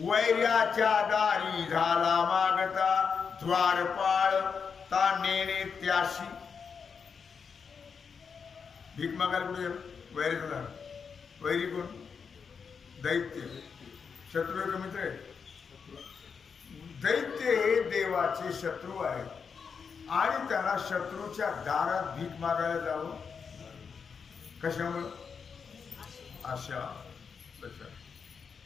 दारी झाला मागता द्वारपाळ ता नेणे त्याशी. भीक मागायला कुठे वैरी झाला? वैरी कोण? दैत्य. शत्रू आहे का मित्र आहे? दैत्य हे देवाचे शत्रू आहेत आणि त्याला शत्रूच्या दारात भीक मागायला जावं. कशामुळं? आशा.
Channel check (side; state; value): right; quieter; 6.0 dB